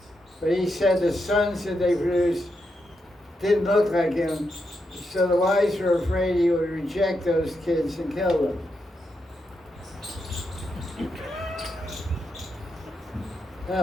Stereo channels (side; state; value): both; normal; correlation 0.84